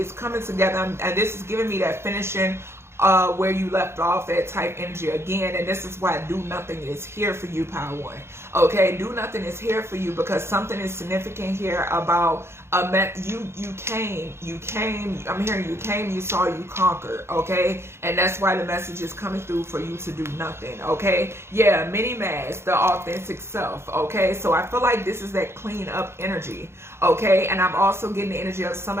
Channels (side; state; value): left; late; 0.12 ms